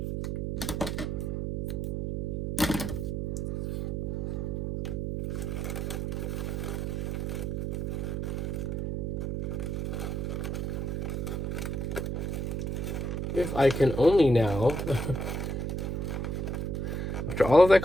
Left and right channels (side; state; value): right; noise; hum, 1 dB below the sound